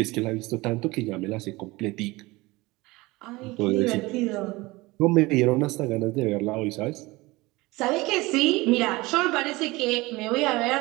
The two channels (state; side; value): quieter; left; 21.7 dB